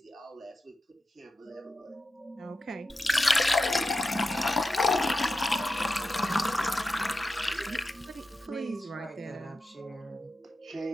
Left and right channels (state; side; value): normal; both; correlation 0.90